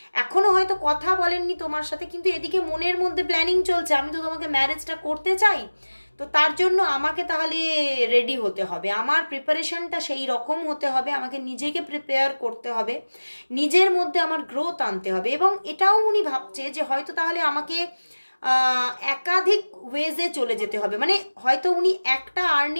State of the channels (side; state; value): both; inverted; correlation -1.00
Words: এখনো হয়তো কথা বলেননি তোমার সাথে, কিন্তু এদিকে মনের মধ্যে প্ল্যানিং চলছে আমি তো তোমাকে ম্যারেজটা করতে চাই, তো তার জন্য আমাকে তাহলে রেডি হতে হবে, আমার প্রিপারেশনটা সেই রকম হতে হবে, আমাকে নিজেকে প্রিপেয়ার করতে হবে, নিজের মধ্যে আমার গ্রোথ আনতে হবে। এবং এটাও উনি ভাবছে যে হয়তো তাহলে আমাকে একাধিক ওয়েজে চলে যেতে হবে, মানে হয়তো উনি একটা